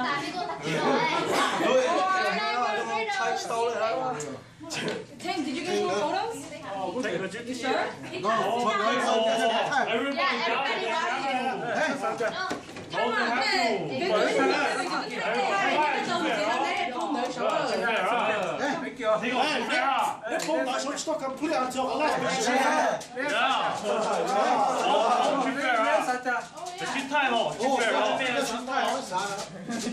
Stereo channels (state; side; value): identical; both; correlation 1.00